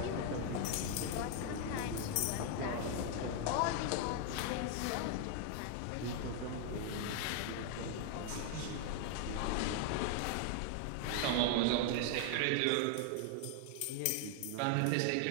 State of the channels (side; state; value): both; different; correlation 0.00